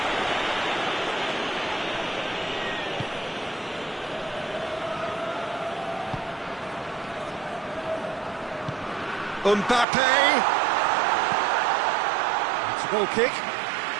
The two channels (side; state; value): left; drops out; at 9.9 s